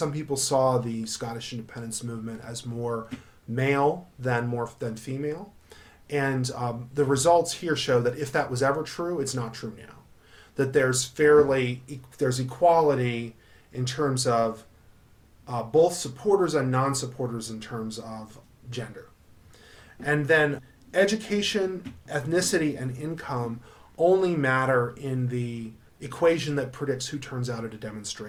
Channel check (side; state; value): both; identical; correlation 1.00